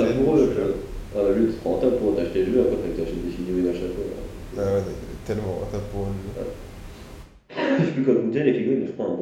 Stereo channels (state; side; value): identical; both; correlation 1.00